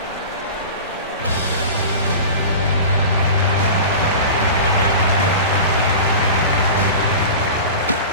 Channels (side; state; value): both; inverted; correlation -0.33